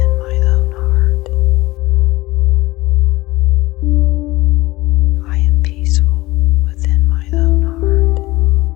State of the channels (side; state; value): right; quieter; 19.4 dB